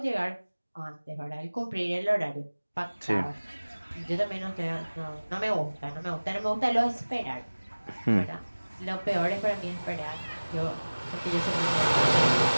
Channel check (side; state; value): both; inverted; correlation -1.00